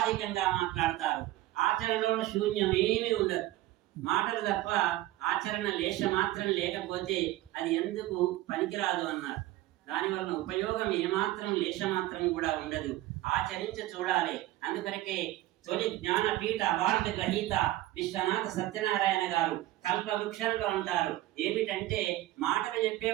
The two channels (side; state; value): left; quieter; 16.1 dB